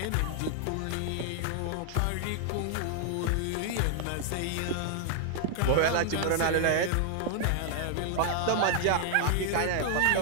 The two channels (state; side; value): different; both; correlation 0.00